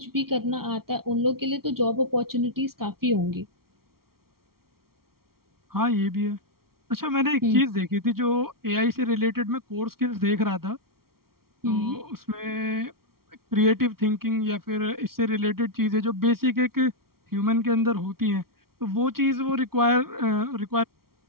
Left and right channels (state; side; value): late; left; 0.94 ms